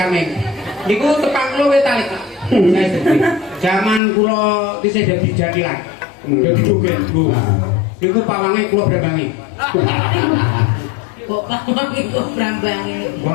Niku tepang kula wis talik. Saya sedih. Zaman kula isih dadi jadilan. Dadi joget, Bu. Niku pawange kula brambangi. Kok pamang iku brambange.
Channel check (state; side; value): drops out; right; at 4.0 s